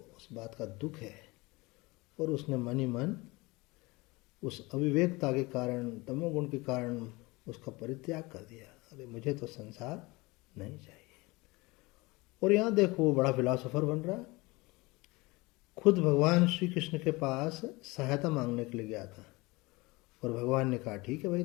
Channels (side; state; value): right; quieter; 23.4 dB